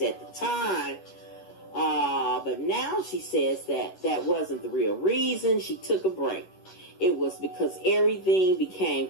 at the time, but now she says that wasn't the real reason she took a break. It was because everything became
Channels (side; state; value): right; late; 11 ms